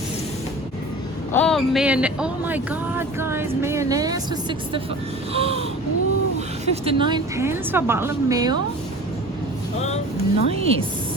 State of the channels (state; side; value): normal; both; correlation 0.39